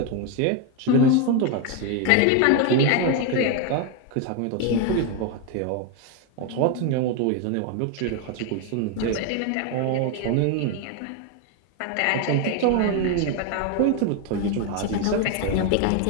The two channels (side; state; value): both; different; correlation 0.01